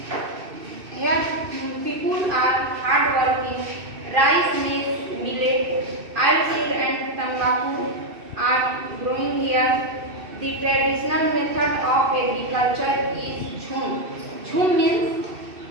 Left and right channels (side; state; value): left; late; 2.6 ms